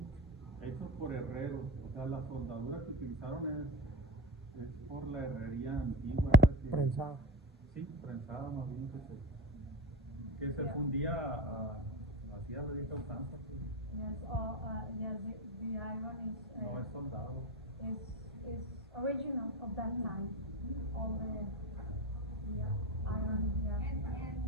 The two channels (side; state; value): both; normal; correlation 0.21